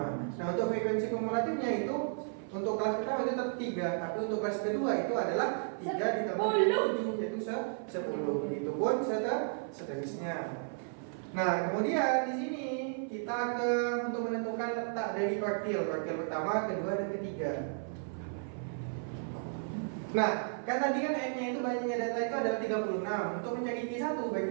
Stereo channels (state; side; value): silent; left; 55 dB below the other